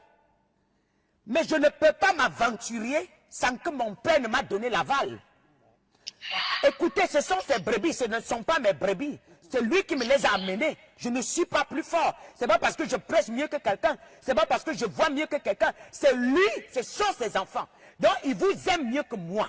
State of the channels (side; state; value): both; identical; correlation 1.00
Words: Mais je ne peux pas m'aventurer sans que mon père ne m'a donné l'aval. Écoutez, ce sont ses brebis, ce ne sont pas mes brebis. C'est lui qui me les a amenés. Je ne suis pas plus fort. C'est pas parce que je prêche mieux que quelqu'un. C'est pas parce que je vois mieux que quelqu'un. C'est lui, ce sont ses enfants. Donc, il vous aime mieux que